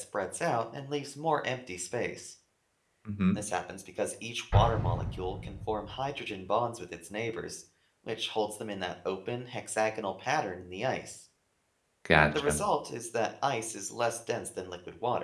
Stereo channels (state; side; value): identical; both; correlation 1.00